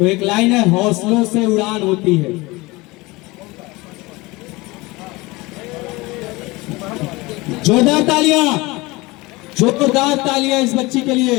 एक लाइन है, हौसलों से उड़ान होती है। जोरदार तालियां, जोरदार तालियां इस बच्ची के लिए।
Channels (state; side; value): quieter; right; 22.7 dB